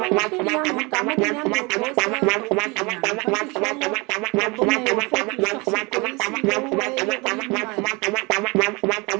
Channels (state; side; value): quieter; left; 27.1 dB